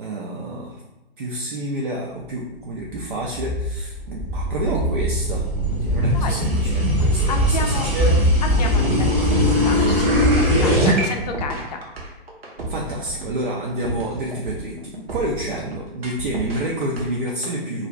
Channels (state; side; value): normal; both; correlation -0.03